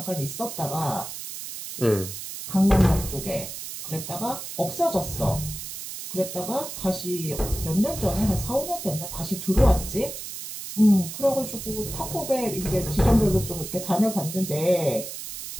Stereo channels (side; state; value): right; noise; hiss, 9 dB below the sound